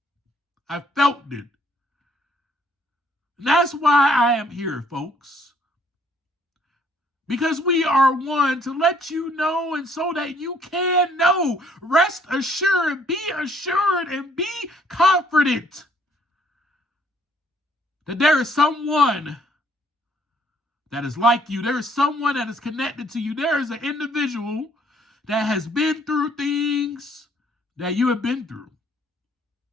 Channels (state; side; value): normal; both; correlation 0.64